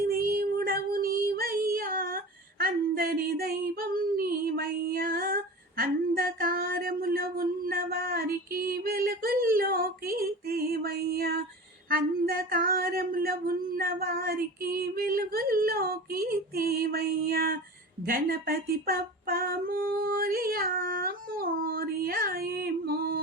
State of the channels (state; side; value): normal; both; correlation 0.33